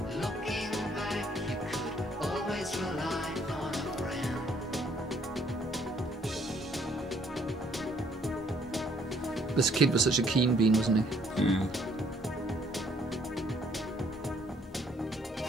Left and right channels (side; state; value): both; normal; correlation 0.64